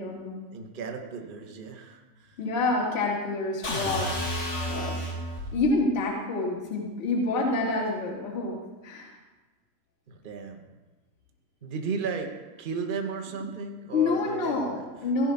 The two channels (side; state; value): right; late; 3.5 ms